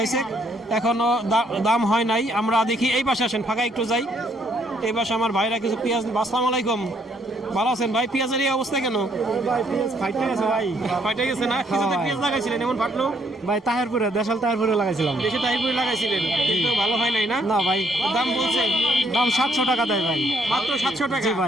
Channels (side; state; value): both; normal; correlation 0.69